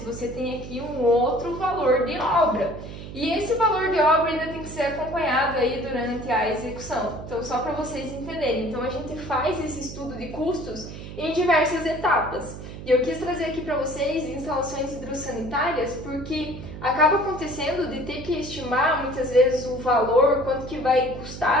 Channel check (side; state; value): right; noise; hum, 11 dB below the sound